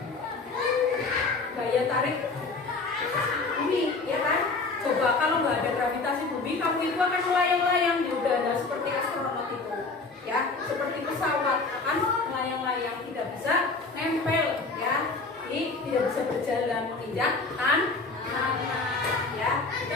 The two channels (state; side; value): quieter; right; 3.8 dB